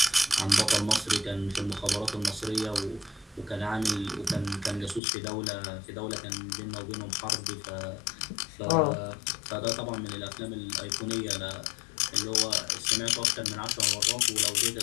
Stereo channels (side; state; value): right; drops out; at 5.0 s